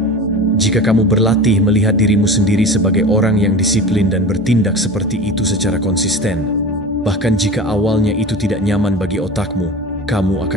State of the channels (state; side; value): normal; both; correlation 0.34